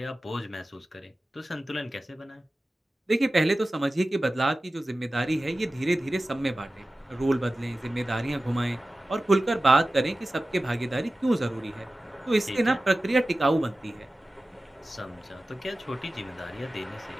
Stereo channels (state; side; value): normal; both; correlation 0.96